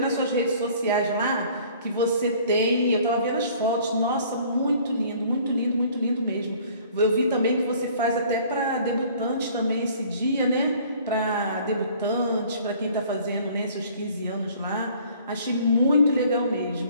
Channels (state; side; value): inverted; both; correlation -0.54